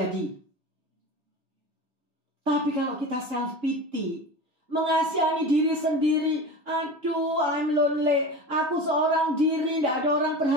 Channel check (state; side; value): late; left; 3.6 ms